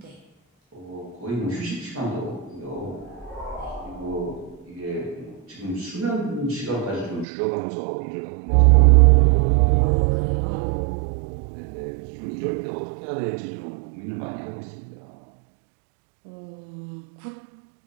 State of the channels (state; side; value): drops out; left; at 7.2 s